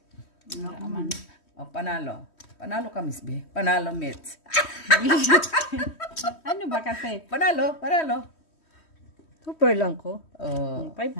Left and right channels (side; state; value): right; late; 3.1 ms